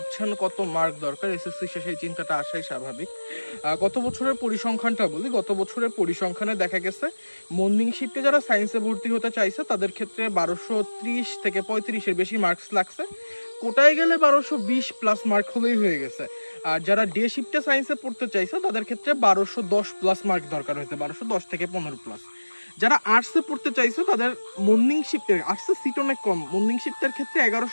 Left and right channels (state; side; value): inverted; both; correlation -1.00